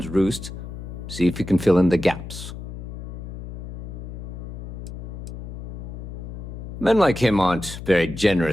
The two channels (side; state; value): left; noise; hum, 9 dB below the sound